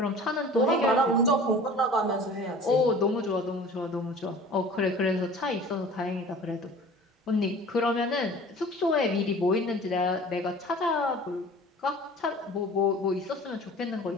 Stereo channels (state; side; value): normal; both; correlation 0.44